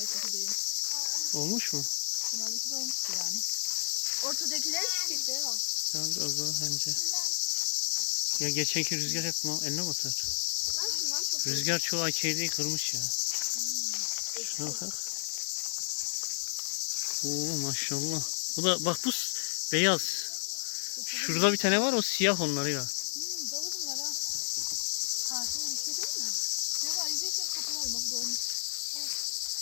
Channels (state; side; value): silent; right; digital silence